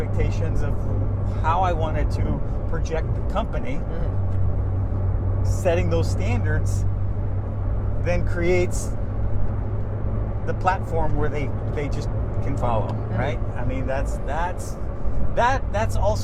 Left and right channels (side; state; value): both; identical; correlation 1.00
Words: of how I wanted to project the company, setting those standards then creates the platform where they just can follow, right? I mean, that's